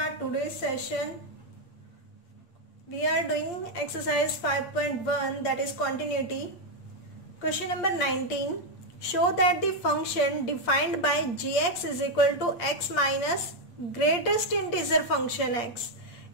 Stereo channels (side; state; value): right; late; 8.5 ms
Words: today's session. We are doing exercise 5.1, that is continuity. Question number 19. Show that the function defined by gx is equal to x minus greatest integer function x